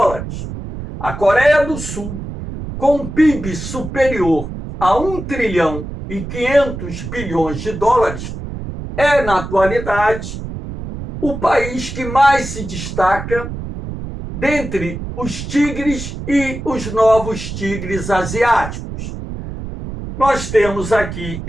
A Coreia do Sul, com um PIB superior a 1 trilhão e 500 bilhões de dólares, é, na atualidade, o país que mais se destaca dentre os tigres e os novos tigres asiáticos. Nós temos aqui,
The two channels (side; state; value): right; noise; rumble, 8 dB below the sound